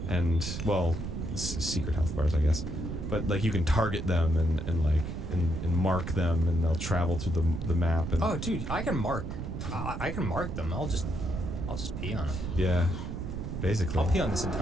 and well, secret health bars, I guess. But like you can target them and mark them, and they'll travel through the map. And Oh, dude, I can mark. I can mark them. I'll just pee on them. yeah, basically. I'll pee on this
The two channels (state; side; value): noise; right; rumble, 5 dB below the sound